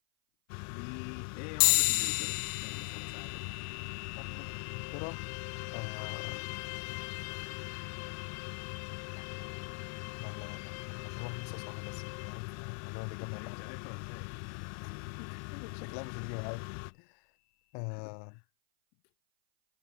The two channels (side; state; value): right; silent; 52 dB below the other